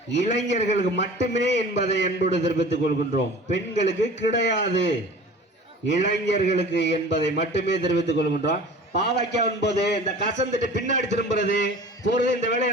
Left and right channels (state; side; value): normal; both; correlation 0.41